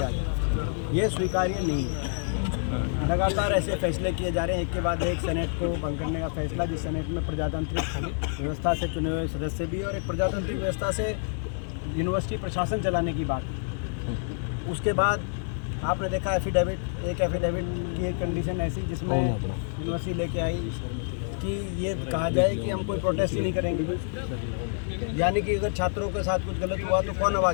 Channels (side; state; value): right; silent; 56 dB below the other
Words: जा रहा है। ये स्वीकार्य नहीं है। लगातार ऐसे फैसले किए जा रहे हैं, एक के बाद एक सेनेट को भंग करने का फैसला, जिस सेनेट में प्रजातांत्रिक व्यवस्था से चुने हुए सदस्य भी और एक प्रजातांत्रिक व्यवस्था से यूनिवर्सिटी प्रशासन चलाने की बात। उसके बाद आपने देखा एफिडेविट की एक कंडीशन ऐसी जिसमें यूनिवर्सिटी लेके आई कि ये कहा जाए कि हम कोई प्रोटेस्ट ही नहीं करेंगे, यानी कि अगर छात्रों के साथ कुछ गलत हुआ तो कौन